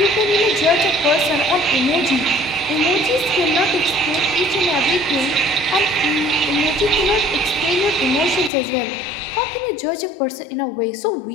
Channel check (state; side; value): drops out; right; at 8.5 s